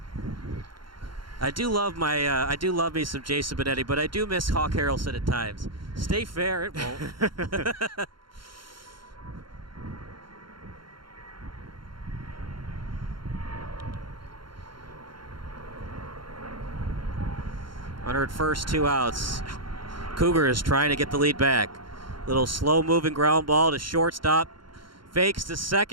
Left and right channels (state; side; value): late; left; 0.73 ms